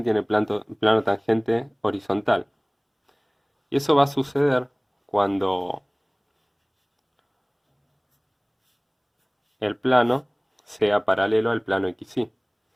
tiene plano tangente horizontal. Y eso va a suceder cuando el plano sea paralelo al plano XY.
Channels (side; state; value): both; identical; correlation 1.00